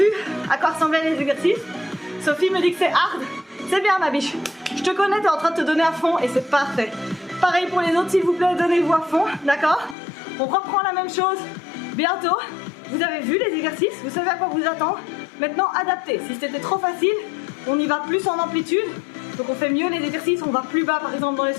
à quoi ressemblaient les exercices. Sophie me dit que c'est hard. C'est bien ma biche. Je te connais, t'es en train de te donner à fond et c'est parfait. Pareil pour les autres, s'il vous plaît, donnez-vous à fond, d'accord? On reprend la même chose bientôt. Vous avez vu les exercices, vous savez à quoi vous attendre. Maintenant, adaptez. Si c'était trop facile, on y va plus en amplitude. Donc on fait mieux les exercices, on va plus bas par exemple dans les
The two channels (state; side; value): drops out; right; at 10.0 s